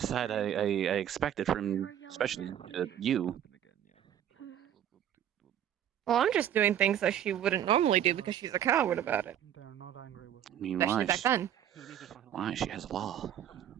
I expected from, especially you. Well, I'm just doing things that she wouldn't normally do because she's a coward about it. I mean, Especially why? back then. Why? She has law.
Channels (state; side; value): quieter; left; 10.3 dB